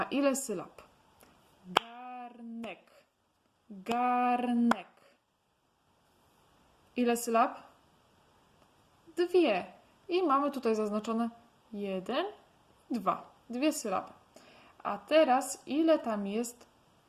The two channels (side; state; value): both; identical; correlation 1.00